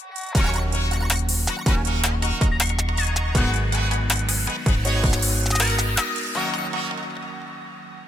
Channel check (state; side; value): normal; both; correlation 0.83